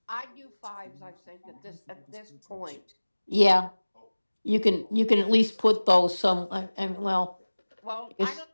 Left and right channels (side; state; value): both; inverted; correlation -1.00